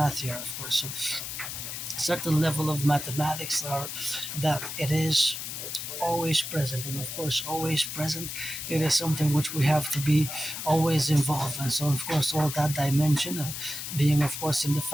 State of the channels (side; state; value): left; noise; hiss, 6 dB below the sound